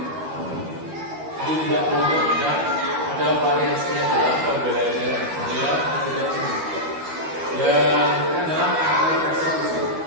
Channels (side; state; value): left; late; 12 ms